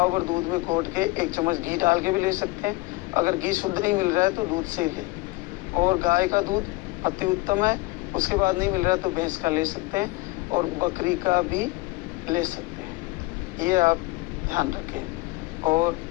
भर दूध में घोट के 1 चम्मच घी डाल के भी ले सकते हैं। अगर घी शुद्ध नहीं मिल रहा है तो दूध से ही ले। और गाय का दूध अति उत्तम है, उसके बाद नहीं मिल रहा तो भैंस का ले सकते हैं और बकरी का भी ले सकते हैं। ये आप ध्यान रखें। और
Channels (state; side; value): quieter; right; 22.4 dB